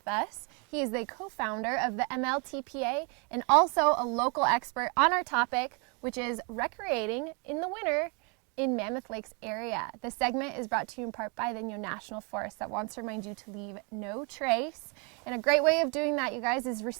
us. He is the co-founder of the MLTPA and also a local expert on our topic, which is recreating in the winter in Mammoth Lakes area. This segment is brought to you in part by the Inyo National Forest that wants to remind you to leave no trace. And a great way of doing that, you guys, is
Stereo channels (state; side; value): quieter; left; 34.3 dB